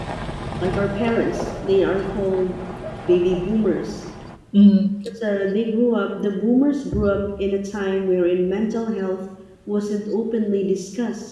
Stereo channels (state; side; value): identical; both; correlation 1.00